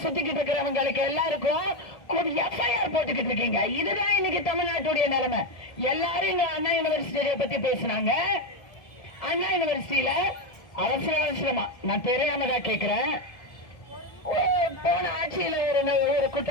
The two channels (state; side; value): late; right; 1.7 ms